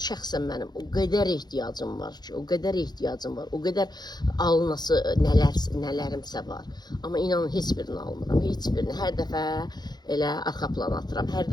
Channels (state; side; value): late; right; 0.20 ms